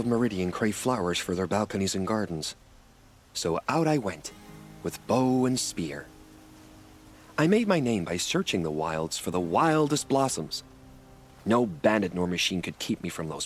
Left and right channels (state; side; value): identical; both; correlation 1.00